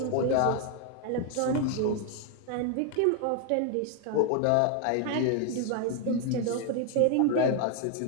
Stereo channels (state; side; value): different; both; correlation 0.00